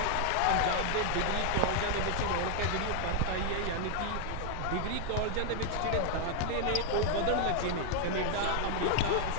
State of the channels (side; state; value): both; different; correlation 0.00